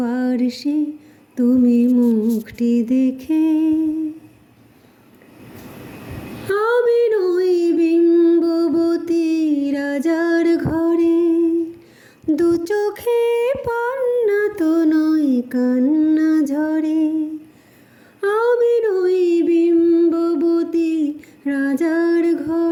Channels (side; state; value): both; identical; correlation 1.00